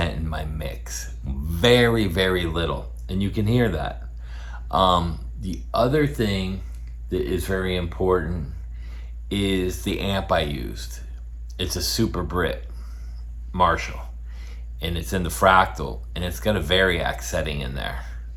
in my mix. Very, very little. And you can hear that. The other thing that is very important is the amp I used. It's a Super Brit Marshall, and it's in the fractal, and it's got a Variac setting in there.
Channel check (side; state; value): both; identical; correlation 1.00